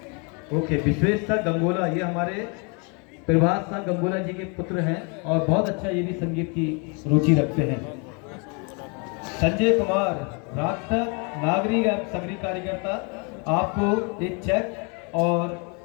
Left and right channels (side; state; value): right; quieter; 33.9 dB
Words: ओके, विश्वेश शाह गंगोला, ये हमारे प्रभात शाह गंगोला जी के पुत्र हैं और बहुत अच्छा ये भी संगीत की रुचि रखते हैं। संजय कुमार, राक्षस, नागरिक एवं सक्रिय कार्यकर्ता, आपको एक चेक और